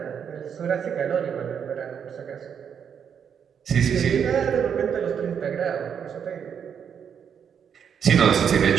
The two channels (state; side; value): quieter; left; 7.7 dB